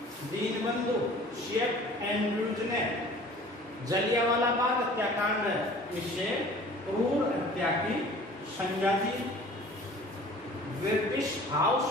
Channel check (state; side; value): normal; both; correlation 0.47